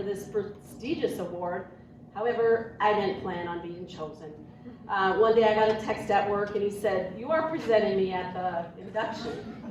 this prestigious award. However, I didn't plan on being chosen. One day I got a text at work and he said, "You are presenting me at the induction."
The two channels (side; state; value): both; identical; correlation 1.00